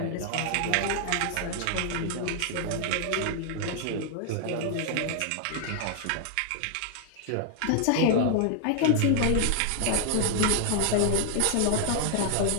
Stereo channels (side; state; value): both; different; correlation -0.01